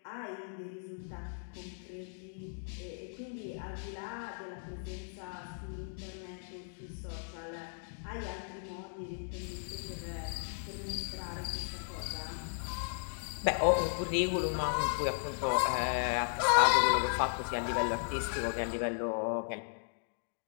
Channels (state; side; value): silent; right; digital silence